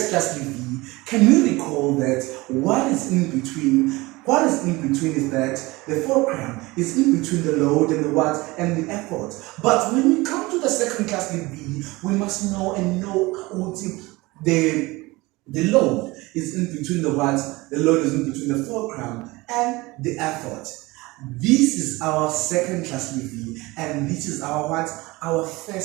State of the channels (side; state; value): left; quieter; 21.9 dB